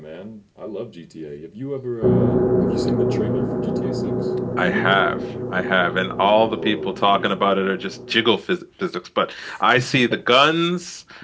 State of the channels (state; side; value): identical; both; correlation 1.00